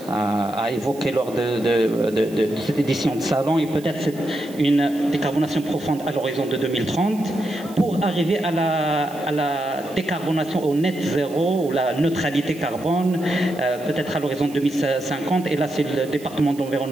évoqué lors de cette édition de salon, et peut-être une décarbonation profonde à l'horizon de 2030 pour arriver à la décarbonation au net zéro ou la neutralité carbone, peut-être à l'horizon 2050. Et là c'est le département de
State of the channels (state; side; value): noise; right; hiss, 21 dB below the sound